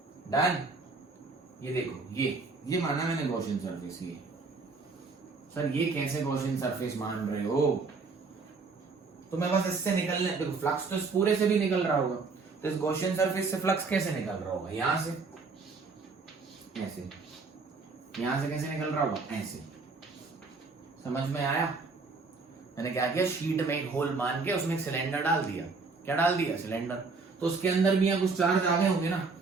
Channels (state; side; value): quieter; left; 4.3 dB